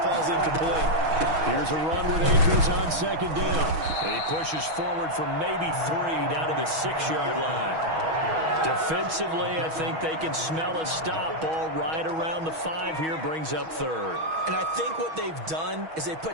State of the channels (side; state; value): left; late; 6.2 ms